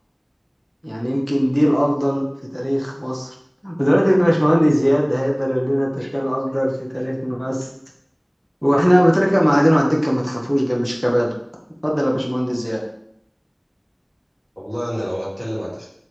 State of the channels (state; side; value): identical; both; correlation 1.00